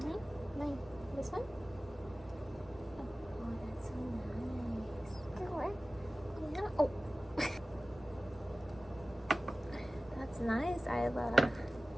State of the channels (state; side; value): normal; both; correlation 0.96